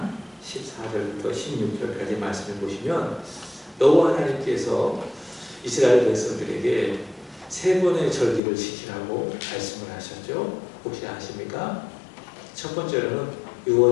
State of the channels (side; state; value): right; drops out; at 8.4 s